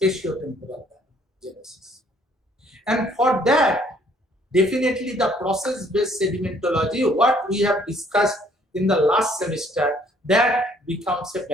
genesis. And for that, definitely the process-based sedimentology, what we have discussed in the last semester, that becomes a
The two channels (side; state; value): both; normal; correlation 0.62